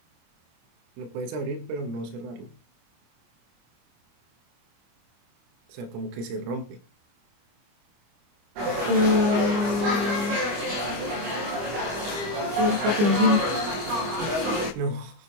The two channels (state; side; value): late; left; 25 ms